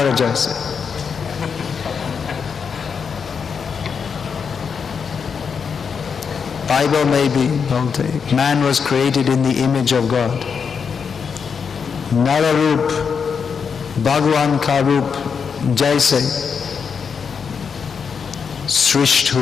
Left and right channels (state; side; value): quieter; right; 6.2 dB